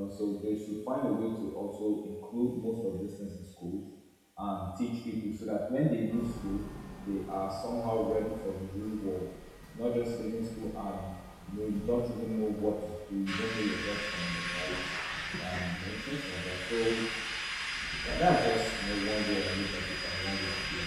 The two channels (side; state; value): both; identical; correlation 1.00